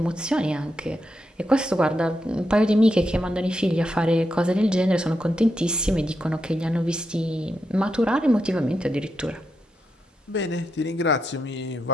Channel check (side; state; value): both; normal; correlation 0.84